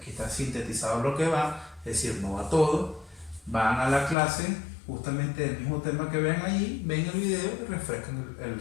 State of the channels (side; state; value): right; drops out; at 4.2 s